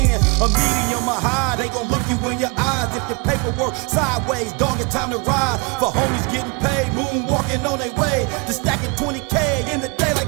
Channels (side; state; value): left; quieter; 30.6 dB